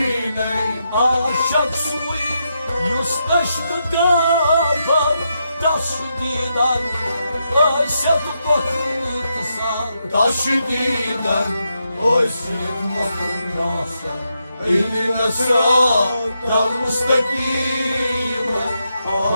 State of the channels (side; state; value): both; inverted; correlation -0.83